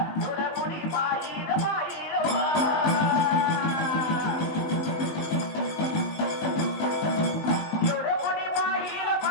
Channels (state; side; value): late; right; 19 ms